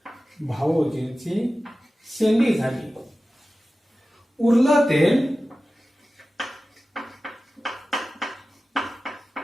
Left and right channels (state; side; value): normal; both; correlation 0.95